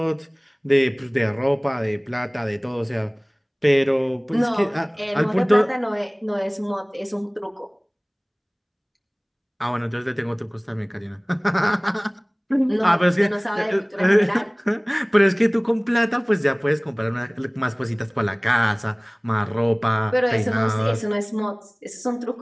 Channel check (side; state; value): both; identical; correlation 1.00